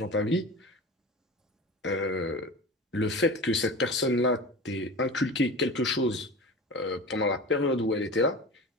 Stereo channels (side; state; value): both; normal; correlation 0.32